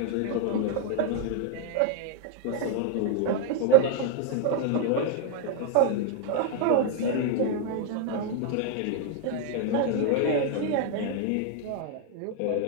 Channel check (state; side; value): different; both; correlation 0.00